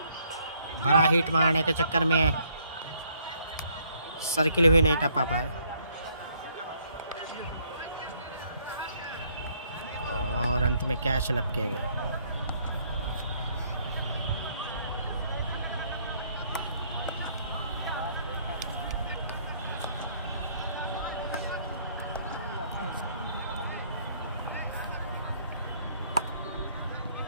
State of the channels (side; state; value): both; inverted; correlation -0.66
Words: बड़ा हिट मारने के चक्कर में सर्किल भी नहीं टपा पाए और अंत में कैच लपके गए।